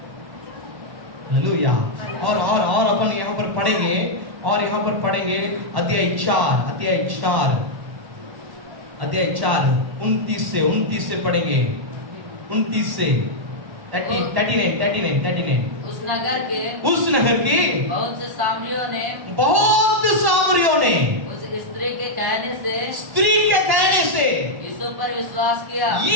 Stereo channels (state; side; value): late; left; 1.1 ms